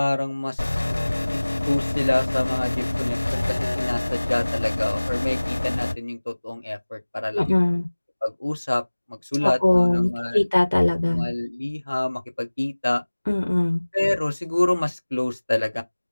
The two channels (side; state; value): both; inverted; correlation -1.00